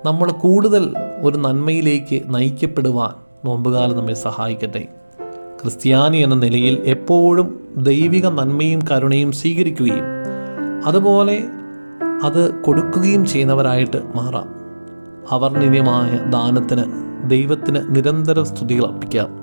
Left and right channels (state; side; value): inverted; both; correlation -1.00